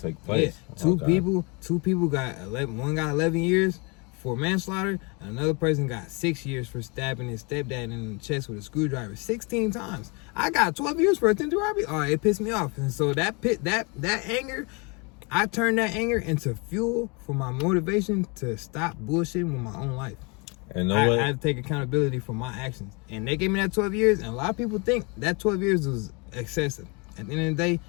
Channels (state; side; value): quieter; right; 30.8 dB